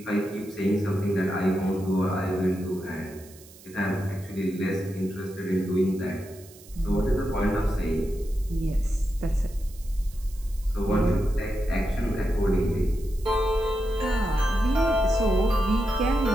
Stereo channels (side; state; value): right; noise; hiss, 22 dB below the sound